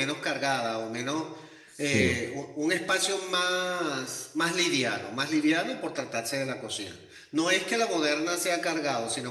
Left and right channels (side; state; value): both; identical; correlation 1.00